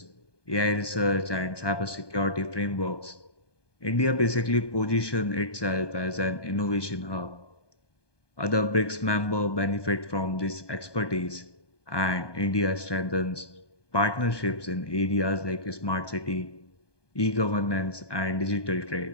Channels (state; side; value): late; right; 1.2 ms